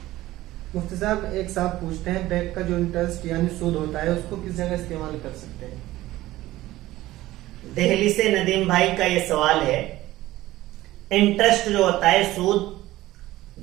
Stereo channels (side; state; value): left; quieter; 16.4 dB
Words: مفتی صاحب ایک صاحب پوچھتے ہیں بینک کا جو انٹرسٹ یعنی سود ہوتا ہے اس کو کس جگہ استعمال کر سکتے ہیں؟ دہلی سے ندیم بھائی کا یہ سوال ہے. انٹرسٹ جو ہوتا ہے, سود